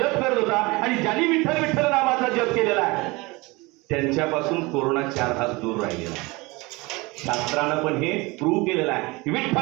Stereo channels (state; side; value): quieter; left; 24.1 dB